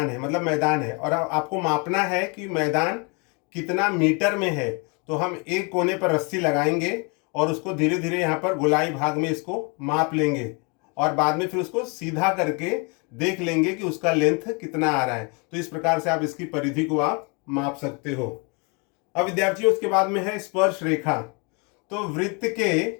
है, मतलब मैदान है, और आपको मापना है कि मैदान कितना मीटर में है। तो हम एक कोने पर रस्सी लगाएंगे और उसको धीरे धीरे यहाँ पर गोलाई भाग में इसको माप लेंगे, और बाद में फिर उसको सीधा करके देख लेंगे कि उसका लेंथ कितना आ रहा है। तो इस प्रकार से आप इसकी परिधि को आप माप सकते हो। अब विद्यार्थियों उसके बाद में है स्पर्श रेखा। तो वृत्त के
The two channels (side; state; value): right; quieter; 32.1 dB